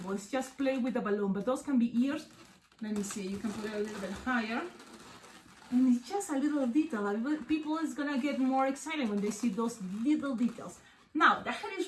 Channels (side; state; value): both; identical; correlation 1.00